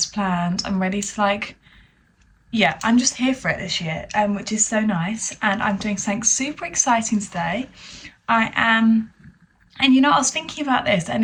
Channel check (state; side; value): identical; both; correlation 1.00